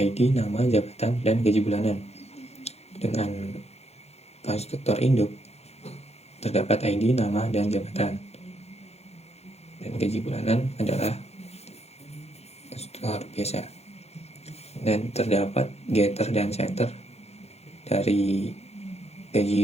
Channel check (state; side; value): late; right; 0.31 ms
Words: nama, jabatan, dan gaji bulanan. Dengan konstruktor induk terdapat ID, nama, dan jabatan, dan gaji bulanan adalah konstruktor biasa. Dan terdapat getter dan setter dari